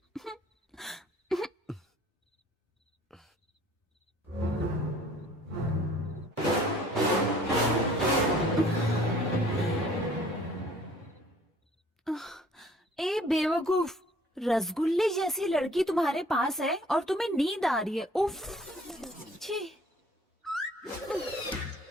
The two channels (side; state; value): both; normal; correlation 0.55